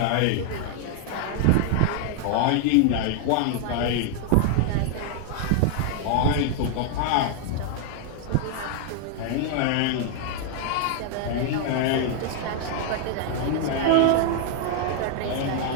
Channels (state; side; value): different; both; correlation 0.00